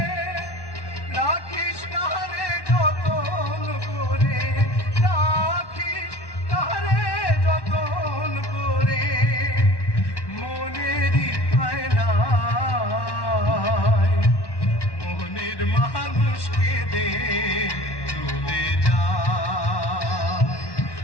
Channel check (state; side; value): late; right; 1.1 ms